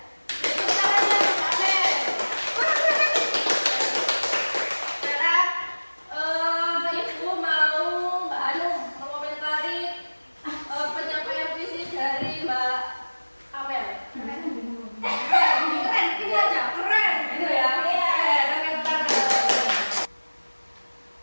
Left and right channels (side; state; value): both; inverted; correlation -1.00